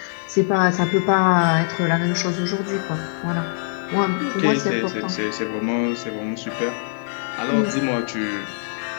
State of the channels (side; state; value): right; silent; digital silence